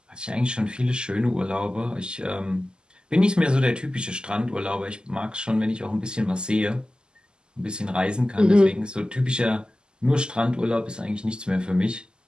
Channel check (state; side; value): late; left; 0.047 ms